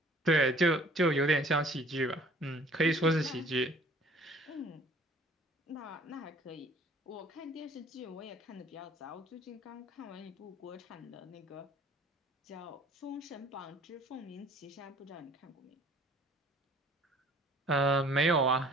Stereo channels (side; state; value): both; normal; correlation 0.53